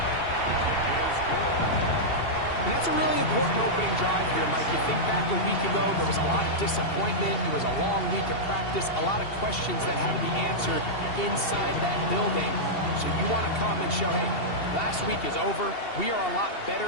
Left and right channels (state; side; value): late; right; 2.7 ms